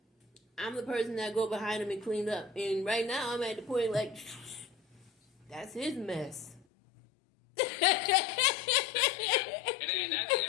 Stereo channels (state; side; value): drops out; right; at 6.7 s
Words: I'm the person that go behind him and cleaned up. And right now I'm at the point that's his mess. And I